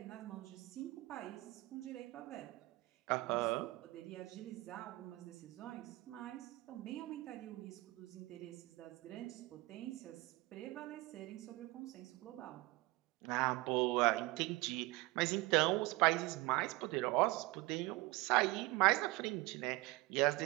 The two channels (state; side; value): quieter; left; 21.2 dB